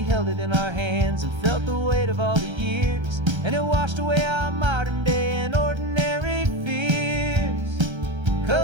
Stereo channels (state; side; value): late; left; 1.3 ms